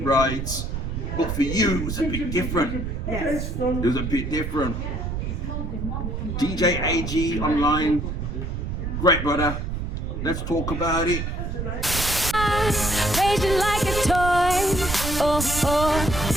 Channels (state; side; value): noise; right; rumble, 4 dB below the sound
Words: right? But for you, it was a bit different. Yes. It was a bit different. DJ AG online, great brother. Let's talk about it. Raging like a toy.